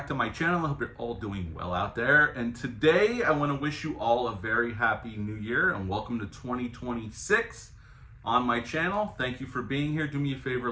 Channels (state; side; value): identical; both; correlation 1.00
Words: to my channel. I hope you're all doing well out there. And today I want to wish you all a very happy new year and welcome to 2026 on my channel. Thank you for being here. Do me a favor,